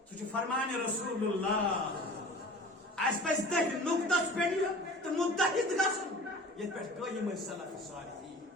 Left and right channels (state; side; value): normal; both; correlation 0.41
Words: سو فرمان رسول اللہ اس پہ تک نقطس پہ تو متحد گھن یہ پہ قائم سلف صالحین